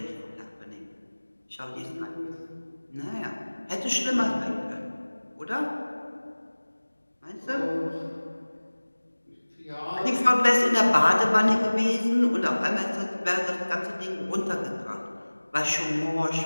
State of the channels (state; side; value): inverted; both; correlation -1.00